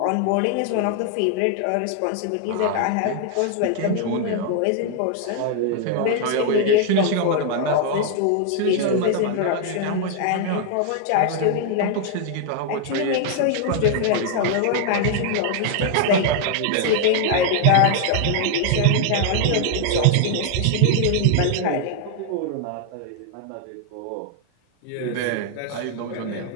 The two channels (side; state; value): both; different; correlation 0.00